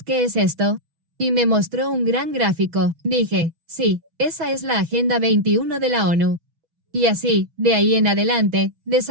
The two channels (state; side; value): late; left; 6.2 ms